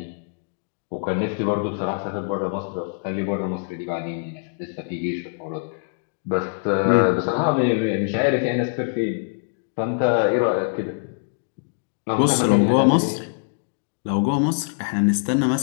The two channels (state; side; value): silent; right; digital silence